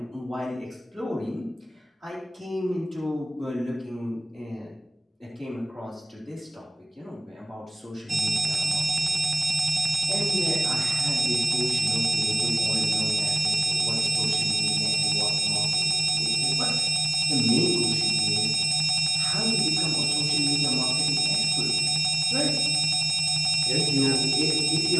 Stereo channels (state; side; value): normal; both; correlation 0.97